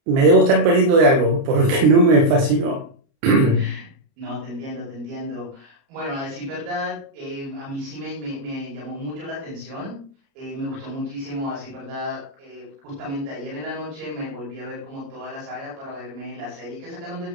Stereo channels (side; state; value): left; late; 30 ms